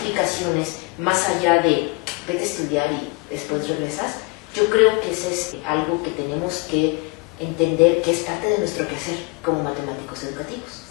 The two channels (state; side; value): quieter; right; 26.9 dB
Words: más allá de vete a estudiar y después regresas, yo creo que eso es algo que tenemos que entender que es parte de nuestro quehacer como matemáticos educativos.